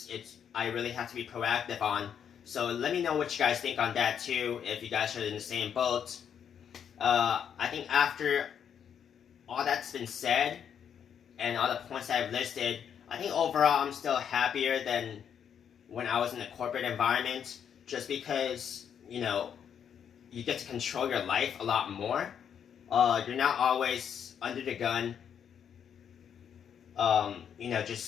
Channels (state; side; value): quieter; right; 8.2 dB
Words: I really have to be proactive on. So let me know what you guys think on that too, if you guys are in the same boat. I think after all that's been said and all the points that I've listed, I think overall I'm still happier than when I was in the corporate environment, just because you get to control your life a lot more. You're not always under the gun,